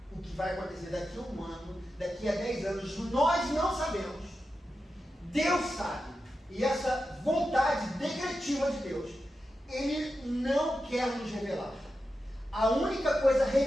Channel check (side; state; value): both; normal; correlation 0.90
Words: o que vai acontecer daqui a 1 ano, daqui a 10 anos, nós não sabemos. Deus sabe. E essa vontade decretiva de Deus, Ele não quer nos revelar. A única coisa